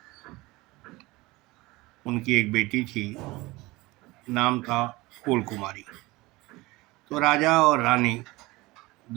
उनकी एक बेटी थी, नाम था फूल कुमारी। तो राजा और रानी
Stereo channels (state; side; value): quieter; left; 21.3 dB